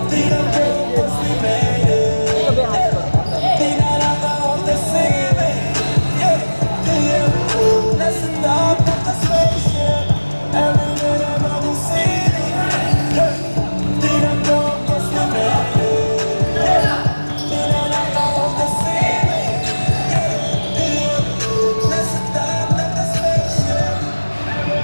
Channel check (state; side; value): inverted; both; correlation -1.00